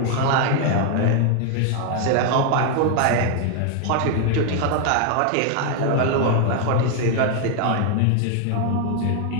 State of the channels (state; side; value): different; both; correlation 0.00